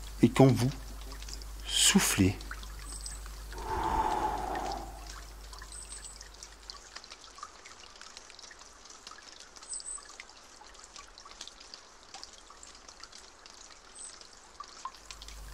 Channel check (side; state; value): both; identical; correlation 1.00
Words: et quand vous soufflez.